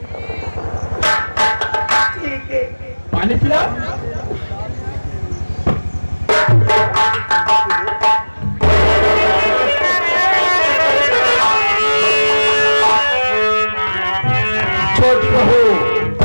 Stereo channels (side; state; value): both; inverted; correlation -1.00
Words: ठीक है, पानी पिला। छोटी बहू